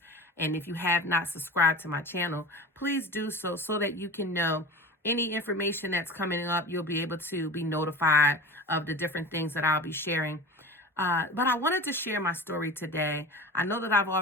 And if you have not subscribed to my channel, please do so that you can know any information that's coming up. You'll be able to be notified of the different things that I'll be sharing. But I wanted to share my story today. I know that I've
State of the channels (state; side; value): normal; both; correlation 0.33